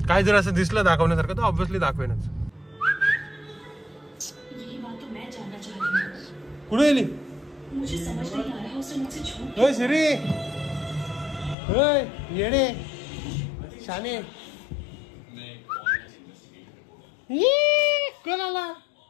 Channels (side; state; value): right; drops out; at 11.6 s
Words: काय जर असं दिसलं दाखवण्यासारखं तर ऑब्व्हियसली दाखवेनच. कुठे गेली श्री? येडे शाने कोण आला?